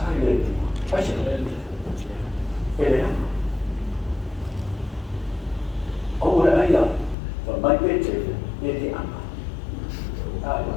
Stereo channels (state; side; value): drops out; right; at 7.2 s